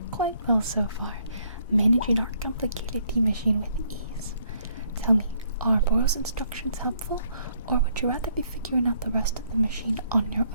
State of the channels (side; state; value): both; inverted; correlation -0.68